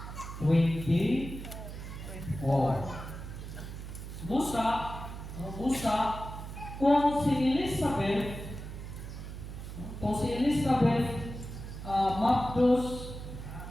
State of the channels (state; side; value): noise; right; hum, 9 dB below the sound